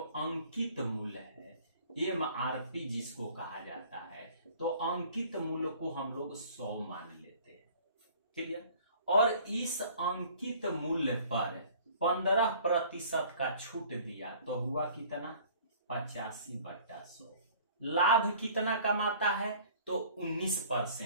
अंकित मूल्य है, MRP जिसको कहा जाता है, तो अंकित मूल्य को हम लोग 100 मान लेते हैं। क्लियर। और इस अंकित मूल्य पर 15% का छूट दिया तो हुआ कितना, 85/100। लाभ कितना कमाता है, तो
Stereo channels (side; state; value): both; inverted; correlation -0.51